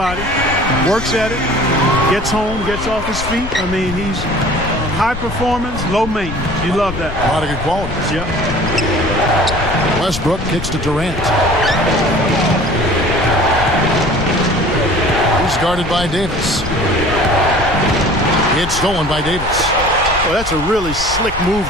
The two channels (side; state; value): left; noise; rumble, 9 dB below the sound